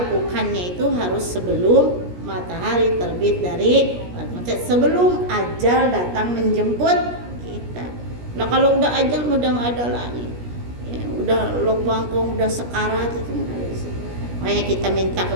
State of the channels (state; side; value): late; left; 17 ms